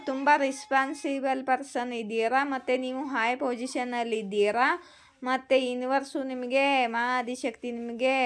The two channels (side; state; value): both; identical; correlation 1.00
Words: ತುಂಬ ರೆಸ್ಪಾನ್ಸಿಬಲ್ ಪರ್ಸನ್ ಇದ್ದೀರಾ ಮತ್ತು ನೀವು ಹೈ ಪೊಸಿಷನಲ್ಲಿ ಇದ್ದೀರಾ. ಮತ್ತು ಯೂನಿವರ್ಸು ನಿಮಗೆ ಆದಿಶಕ್ತಿ ನಿಮಗೆ